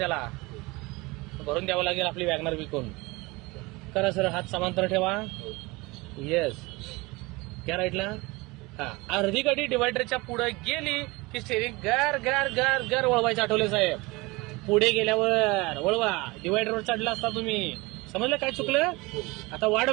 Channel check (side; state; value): left; quieter; 23.6 dB